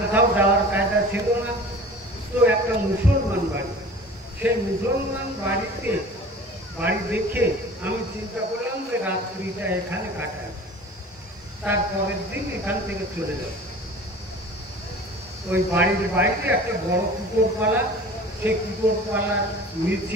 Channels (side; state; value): both; normal; correlation 0.41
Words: যাওয়ার কায়দা ছিল না। তো একটা মুসলমান বাড়ি, সেই মুসলমান বাড়ি দেখে আমি চিন্তা করলাম যে রাত্রিটা এখানে কাটাই, তারপরের দিন এখান থেকে চলে যাব। ওই বাড়ির বাইরে একটা বড় কুকুরপালা, সেই কুকুরপালার